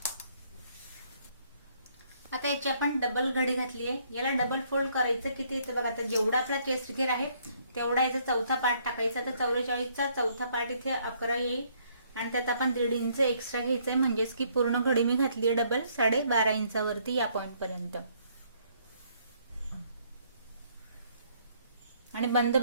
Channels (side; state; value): both; inverted; correlation -0.67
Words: आता याची आपण डबल घडी घातली आहे। याला डबल फोल्ड करायचं किती इथे बघा, आता जेवढा आपला चेस्ट घेर आहे तेवढा याचा चौथा पार्ट टाकायचा। तर 44 चा चौथा पार्ट इथे 11 येईल आणि त्यात आपण 1.5 इंच एक्स्ट्रा घ्यायचंय, म्हणजेच की पूर्ण घडी मी घातली आहे डबल 12.5 इंचावरती या पॉइंट पर्यंत। आणि बंद